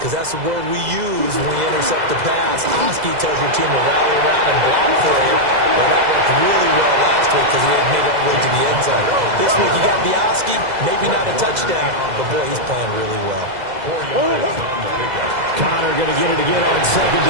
because that's the word we use when we intercept the pass. Oski tells your team to rally around and block for you. Well, that worked really well last week because he had made it way to the end zone. This week he got the Oski, maybe not a touchdown, but boy, he's playing really well. Connor going to get it again on second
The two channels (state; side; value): late; left; 2.0 ms